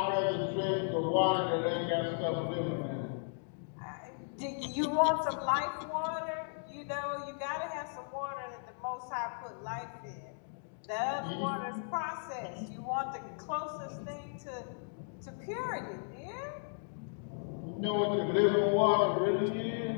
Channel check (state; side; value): silent; right; digital silence